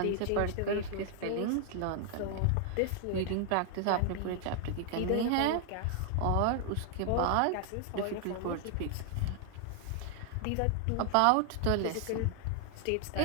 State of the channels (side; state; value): both; different; correlation 0.00